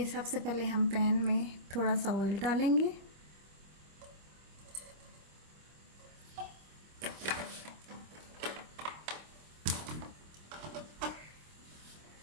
सबसे पहले हम पैन में थोड़ा सा ऑयल डालेंगे।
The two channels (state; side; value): late; left; 25 ms